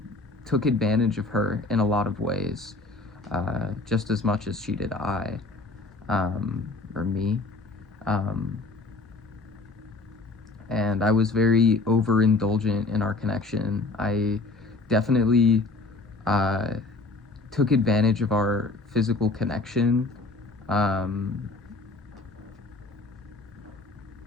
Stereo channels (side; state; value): right; quieter; 3.5 dB